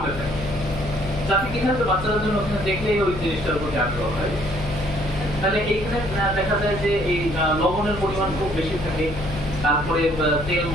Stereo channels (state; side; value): noise; left; hum, 10 dB below the sound